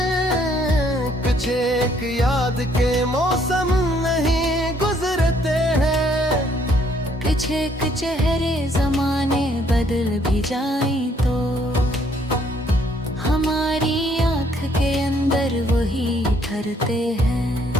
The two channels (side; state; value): both; normal; correlation 0.66